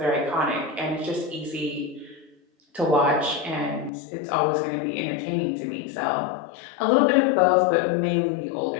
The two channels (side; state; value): right; drops out; at 3.9 s